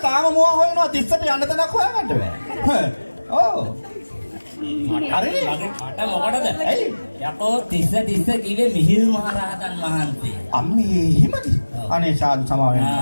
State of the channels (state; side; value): inverted; both; correlation -1.00